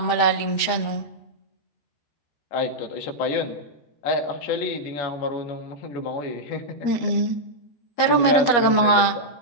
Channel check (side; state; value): right; late; 13 ms